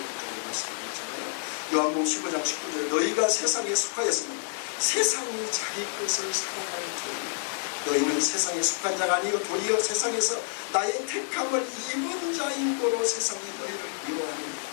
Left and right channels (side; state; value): right; silent; 59 dB below the other